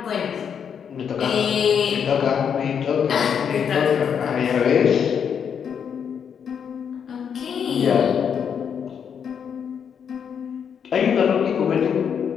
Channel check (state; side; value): quieter; right; 7.5 dB